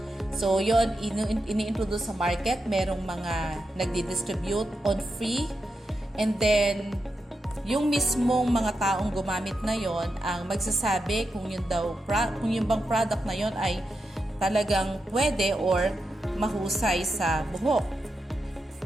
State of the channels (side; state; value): both; normal; correlation 0.87